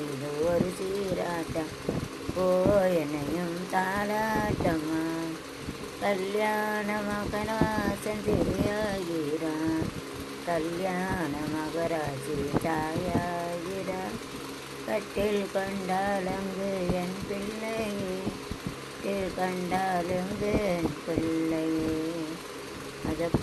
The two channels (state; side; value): identical; both; correlation 1.00